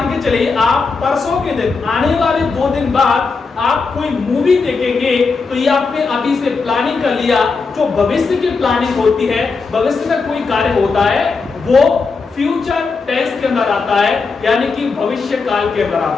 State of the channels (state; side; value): quieter; right; 4.6 dB